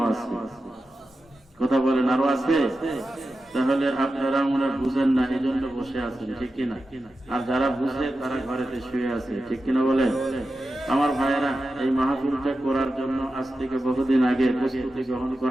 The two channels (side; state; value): both; normal; correlation 0.92